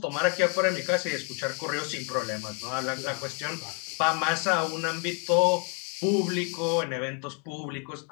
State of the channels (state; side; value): quieter; right; 38.4 dB